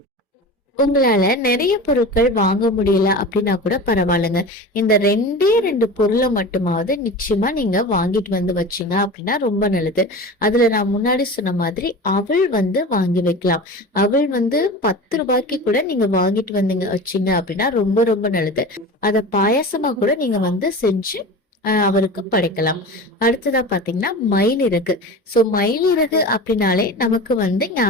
உங்களால நிறைய பொருட்கள் வாங்க முடியல அப்படின்னா கூட பரவாயில்லைங்க. இந்த ரெண்டு பொருளை மட்டுமாவது நிச்சயமா நீங்க வாங்கிட்டு வந்து வச்சீங்க அப்படின்னா ரொம்ப நல்லது. அதுல நான் முன்னாடி சொன்ன மாதிரி அவள் வாங்கி வைக்கலாம். அவள் 10 ரூபாய்க்கு கூட நீங்க வாங்கிட்டு வந்தீங்க வச்சீங்க அப்படின்னா ரொம்ப ரொம்ப நல்லது. அத பாயாசமா கூட நீங்க செஞ்சு அவருக்கு படைக்கலாம். அடுத்ததா பாத்தீங்கன்னா மயிலிறகு. சோ மயிலிறகு அப்படின்னாலே நமக்கு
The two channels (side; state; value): both; normal; correlation 0.32